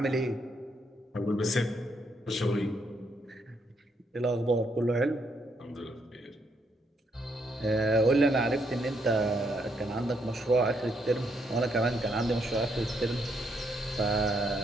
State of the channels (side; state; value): both; normal; correlation 0.75